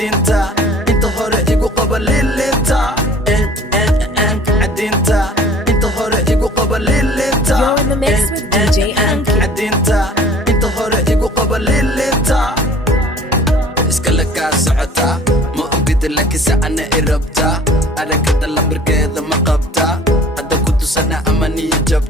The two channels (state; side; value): normal; both; correlation 0.49